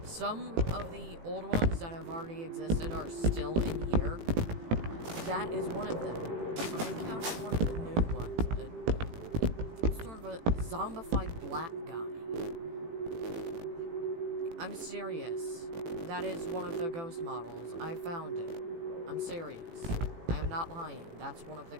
Some of the old ones that have already existed are still in here. That is one of them. But I encountered one of the new ones. Sort of a zombified black guy. I'm serious. That is one of the ghost models. I found it. I'm serious. I am not lying. That's one of the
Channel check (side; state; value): left; late; 18 ms